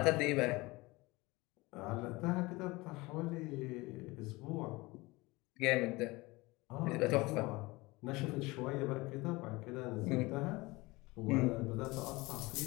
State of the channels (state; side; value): quieter; right; 22.5 dB